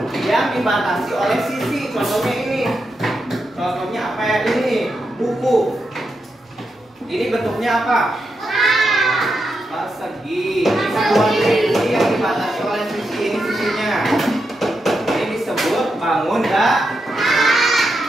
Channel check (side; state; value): both; normal; correlation 0.85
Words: yang dibatasi oleh sisi. Contohnya bentuknya apa? Persegi. Satuan sisi yang dibatasi oleh sisi ini sisinya. Ini disebut bangun datar.